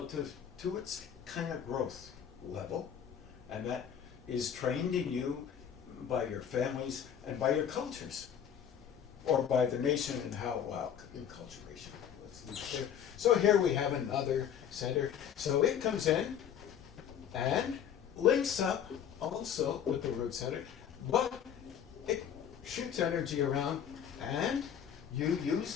to its kind of growth level, and that is trained in you by your families and by your cultures, or by the nation and how, well, enculturation. So here we have another center. So it comes in and links up also with the root center, but it shoots energy around, and you use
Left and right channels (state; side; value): quieter; right; 8.8 dB